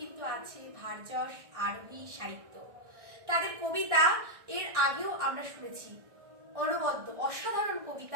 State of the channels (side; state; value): left; late; 1.6 ms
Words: আছে ভারযশ আরোহী সাহিত্য। তাদের কবিতা এর আগেও আমরা শুনেছি, অনবদ্য অসাধারণ